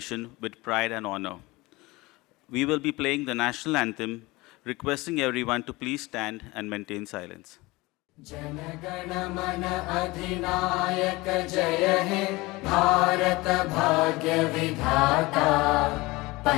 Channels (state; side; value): quieter; right; 22.0 dB